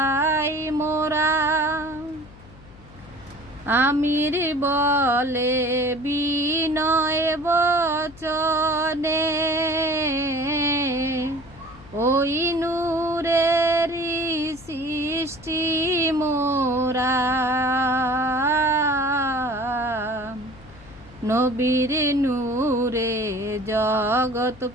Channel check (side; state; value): left; noise; hum, 21 dB below the sound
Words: মোরা। আমির বলে বিনয় বচনে, ওই নূরেরই সৃষ্টি মোরা। নবীর নূরে জগৎ